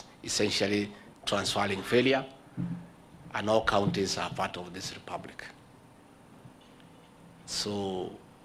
essentially transferring failure, and all counties are part of this republic. So,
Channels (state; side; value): identical; both; correlation 1.00